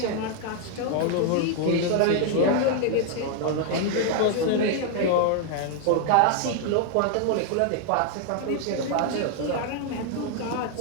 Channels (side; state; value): both; different; correlation 0.00